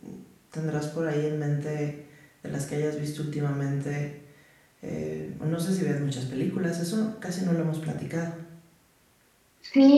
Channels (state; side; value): identical; both; correlation 1.00